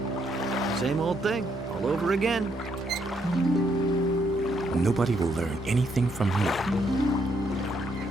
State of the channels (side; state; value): both; normal; correlation 0.74